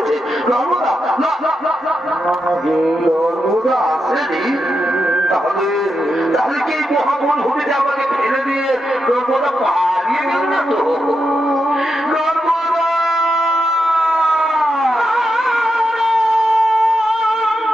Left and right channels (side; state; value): both; normal; correlation 0.86